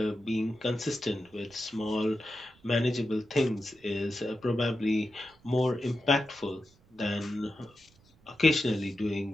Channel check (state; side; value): noise; right; rumble, 29 dB below the sound